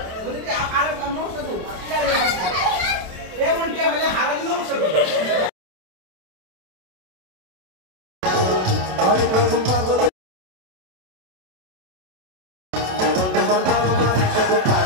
বলে দিয়া আর নমস্কার তো এমন টিয়া হলে হারালি নমস্কার আরে প্রথম পাগল তোমার বাবা মায়ের সাথে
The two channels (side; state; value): left; late; 27 ms